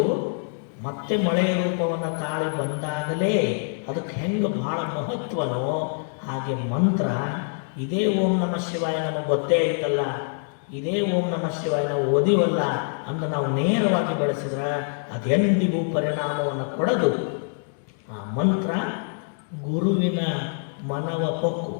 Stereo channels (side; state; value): right; silent; 62 dB below the other